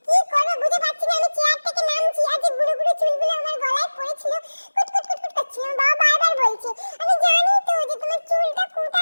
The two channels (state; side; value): inverted; both; correlation -1.00